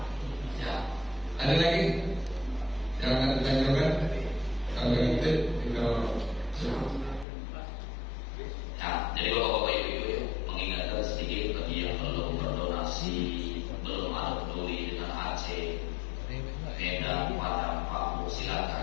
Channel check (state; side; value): drops out; right; at 7.2 s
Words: ya. Ada lagi yang akan ditanyakan kalau itu ya, jadi bapak-bapak ibu-ibu ya, mengingatkan sedikit bagi yang belum berdonasi, belum ada peduli dengan Aceh, Medan, Padang, Papua,